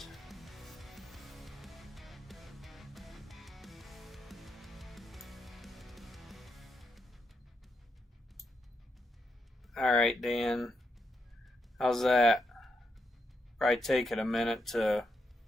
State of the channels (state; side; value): normal; both; correlation 0.83